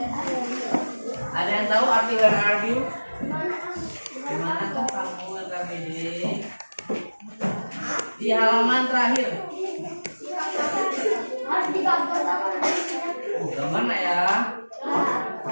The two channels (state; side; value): inverted; both; correlation -1.00